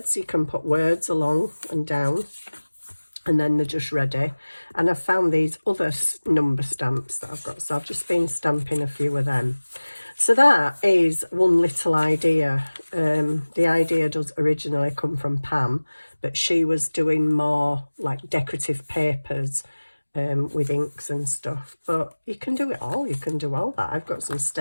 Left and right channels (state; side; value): inverted; both; correlation -1.00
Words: you can put words along and down, and then they're just ready. And I've found these other number stamps that I've got, so I've just been stamping a few of them. So that is one little idea. The idea does originally come from Pam, but she was doing more like decorative papers with inks and stuff. But you can do it all. You can do all that. I've got some